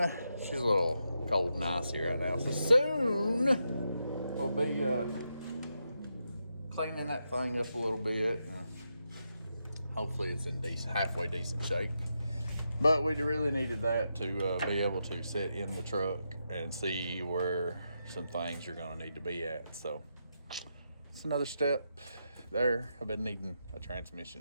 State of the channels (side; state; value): both; inverted; correlation -0.85